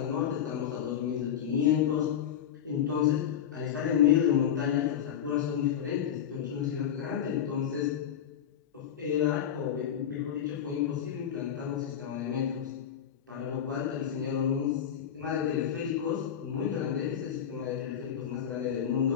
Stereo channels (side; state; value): right; quieter; 9.3 dB